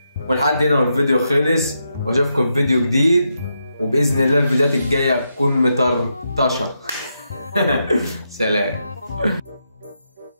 ولحد هنا والفيديو خلص، واشوفكم في فيديو جديد، وباذن الله الفيديوهات الجايه تكون مطرطشه. سلام.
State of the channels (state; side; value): inverted; both; correlation -0.83